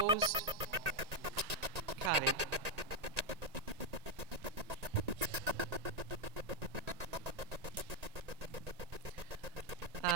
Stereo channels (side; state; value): left; late; 1.9 ms